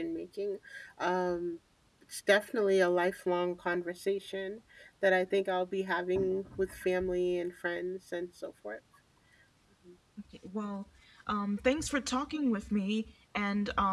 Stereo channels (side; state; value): both; identical; correlation 1.00